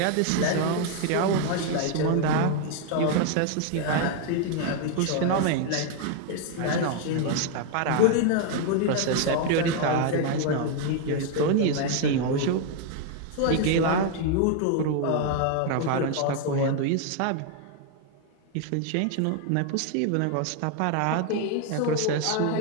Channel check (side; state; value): both; different; correlation 0.00